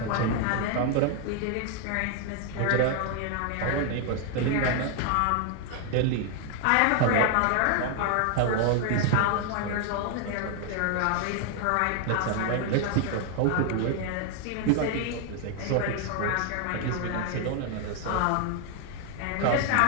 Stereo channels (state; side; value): different; both; correlation 0.00